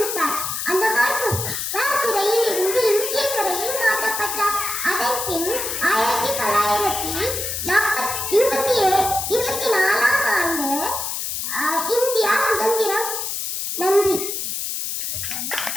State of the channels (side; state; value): left; noise; hiss, 3 dB below the sound